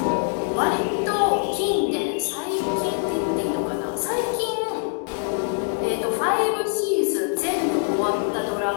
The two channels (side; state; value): right; silent; digital silence